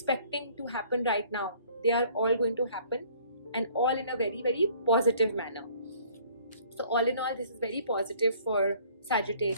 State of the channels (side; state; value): both; inverted; correlation -0.57